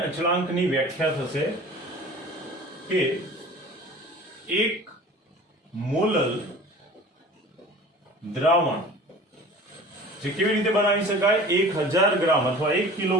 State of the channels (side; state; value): both; normal; correlation 0.42